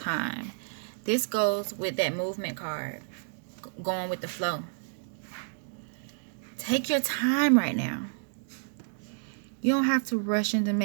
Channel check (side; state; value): left; silent; digital silence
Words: This goes with that movement card, going with the flow. Take your time right now. You don't have to rush into